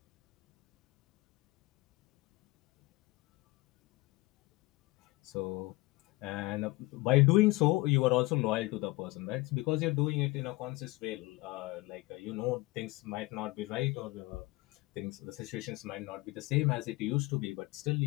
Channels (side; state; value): right; quieter; 21.8 dB